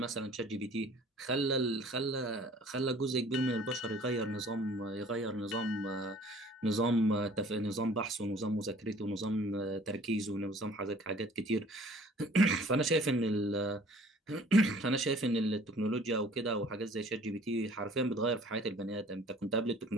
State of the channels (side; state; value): both; normal; correlation 0.52